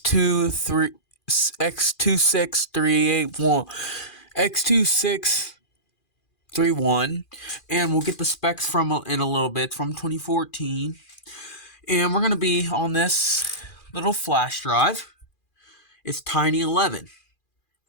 and we'll get the specs from in a little bit. It's from 2014 and we're gonna be on this little flash drive. It's Tiny11.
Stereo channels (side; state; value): right; late; 2.4 ms